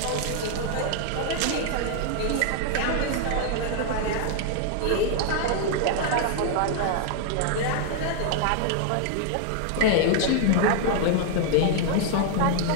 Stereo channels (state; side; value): different; both; correlation 0.00